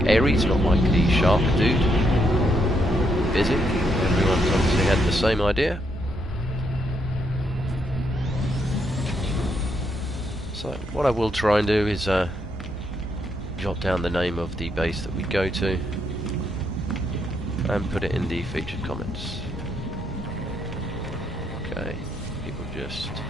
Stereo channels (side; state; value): both; normal; correlation 0.77